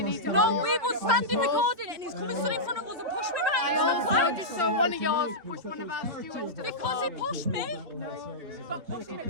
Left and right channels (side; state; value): left; late; 3.3 ms